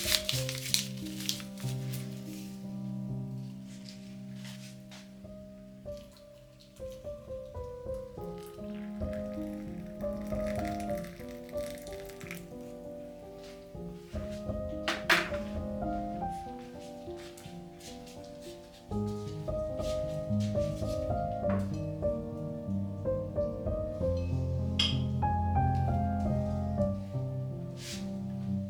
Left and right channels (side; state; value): both; identical; correlation 1.00